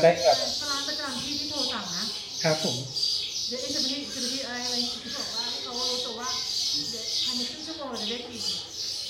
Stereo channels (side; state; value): both; identical; correlation 1.00